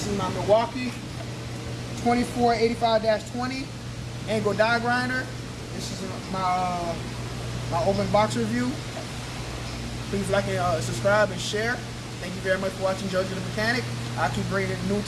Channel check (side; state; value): both; identical; correlation 1.00